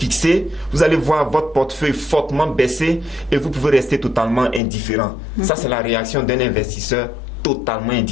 vous allez voir votre portefeuille fortement baisser et vous pouvez rester totalement indifférent. Ça, c'est la réaction d'un investisseur totalement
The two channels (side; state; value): right; drops out; at 4.6 s